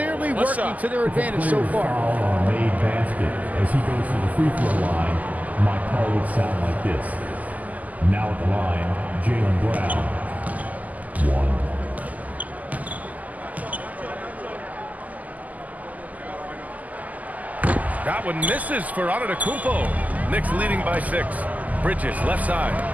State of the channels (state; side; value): late; left; 0.078 ms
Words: working to their advantage so far. On a made basket as he goes to the free throw line. My call would sound like this. Now at the line, Jalen Brown. 1. That one misses for Antetokounmpo. Knicks leading by 6. Bridges left side.